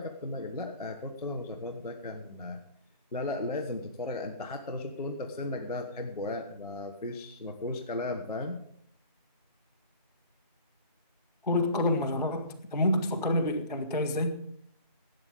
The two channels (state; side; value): inverted; both; correlation -0.44